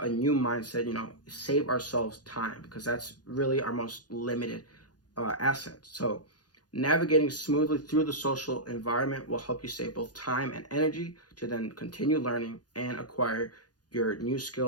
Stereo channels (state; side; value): late; right; 0.69 ms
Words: new mindset, save ourselves time, because that's really our most limited asset. So navigating smoothly through the social environment will help you save both time and energy to then continue learning and acquire your new